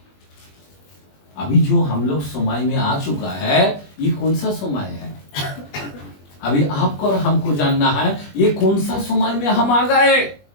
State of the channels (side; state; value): right; late; 21 ms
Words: अभी जो हम लोग समय में आ चुका है, ये कौन सा समय है? अभी आपको और हमको जानना है ये कौन सा समय में हम आ गए।